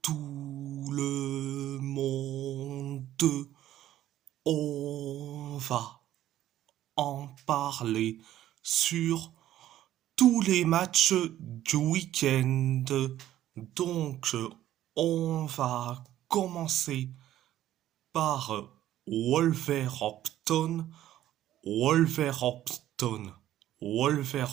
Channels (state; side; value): quieter; left; 13.0 dB